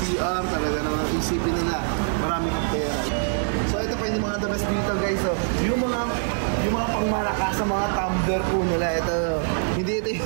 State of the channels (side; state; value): left; silent; digital silence